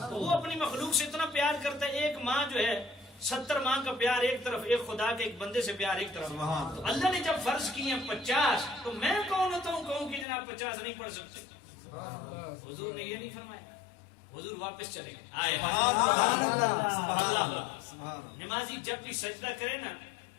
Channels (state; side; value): drops out; right; at 10.2 s